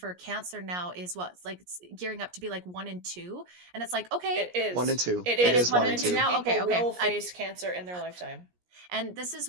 cancer now is what, like it's gearing up to be like 1 in 2. And it's like, okay, It is 1 in 2. It It is is 1 1 in in 2 2. now. people Okay. will face cancer in their lifetime. And this is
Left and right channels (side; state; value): left; late; 17 ms